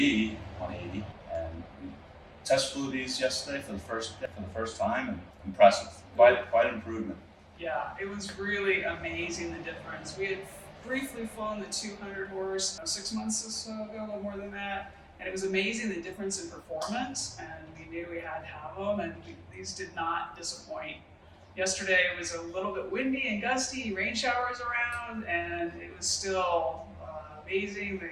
180, and we test flew these yesterday for the first time, and impressive. Quite improvement. Yeah, it was really amazing the difference. We had briefly flown the 200 horse 6 months or so ago, a little more than that, and it was amazing the difference in performance. And we knew we had to have them, and these did not disappoint. Yesterday it was a little bit windy and gusty, rain showers around, and it was still amazing.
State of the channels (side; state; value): both; identical; correlation 1.00